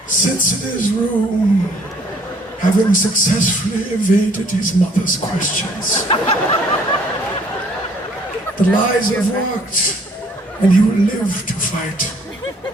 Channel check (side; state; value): both; normal; correlation 0.61